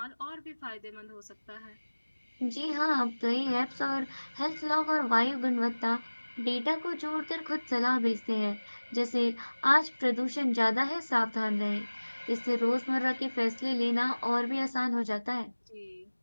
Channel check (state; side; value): inverted; both; correlation -1.00